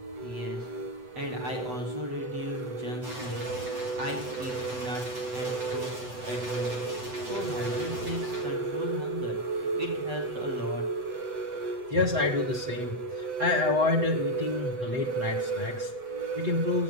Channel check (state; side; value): late; left; 7.9 ms